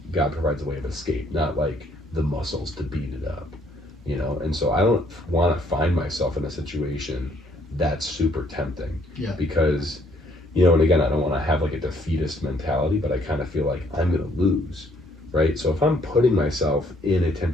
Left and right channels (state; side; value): normal; both; correlation 0.65